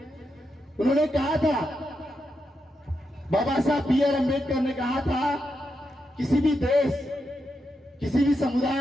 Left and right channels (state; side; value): normal; both; correlation 0.85